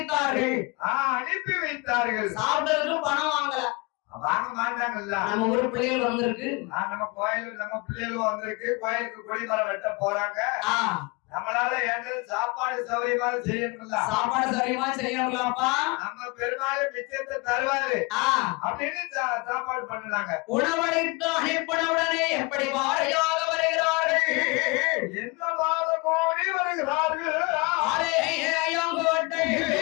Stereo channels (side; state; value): right; quieter; 27.9 dB